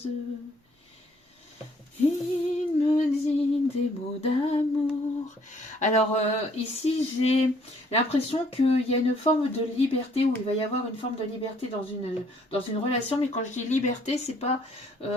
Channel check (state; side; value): normal; both; correlation 0.63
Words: Il me dit des mots d'amour. Alors ici j'ai l'impression qu'il y a une forme de liberté, ou il va y avoir une forme de liberté dans une relation, mais quand je dis liberté, c'est pas